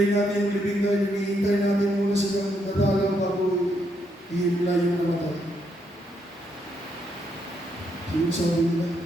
natin yung libing tayo, hinihintay natin muna silang nadalaw bago ihimla yung namatay. So yung sabi nila,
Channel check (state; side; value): normal; both; correlation 0.77